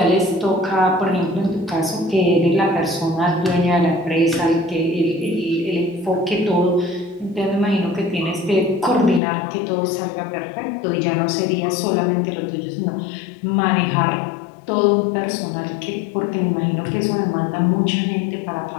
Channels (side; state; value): right; drops out; at 9.2 s